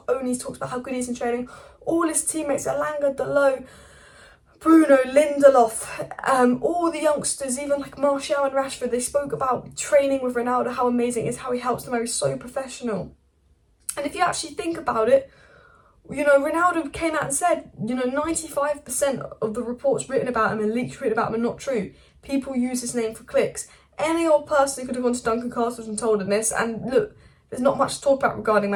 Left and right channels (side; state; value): both; identical; correlation 1.00